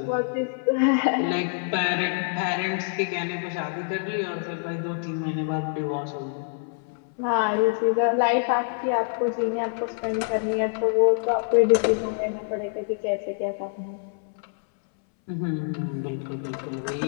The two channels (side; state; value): right; silent; 61 dB below the other